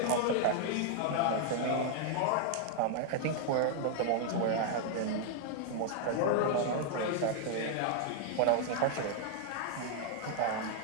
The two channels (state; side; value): different; both; correlation 0.00